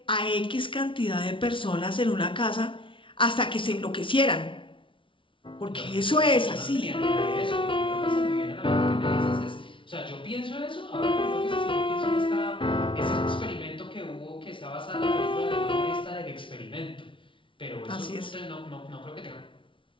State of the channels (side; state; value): right; late; 0.25 ms